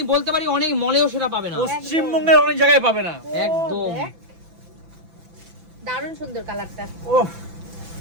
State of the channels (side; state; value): left; late; 5.9 ms